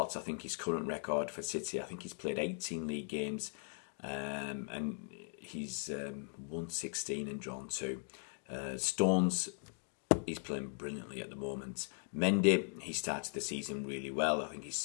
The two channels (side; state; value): right; silent; 52 dB below the other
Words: I think his current record for City, I think he's played 18 league games and he's won 16 and drawn 2. Stones, he's playing brilliantly at the moment. Mendy, he started the season really well. I think